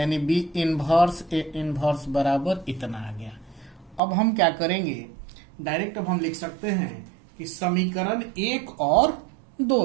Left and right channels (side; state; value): left; drops out; at 4.0 s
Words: बी इन्वर्स ए इन्वर्स बराबर इतना आ गया। अब हम क्या करेंगे? डायरेक्ट अब हम लिख सकते हैं कि समीकरण 1 और 2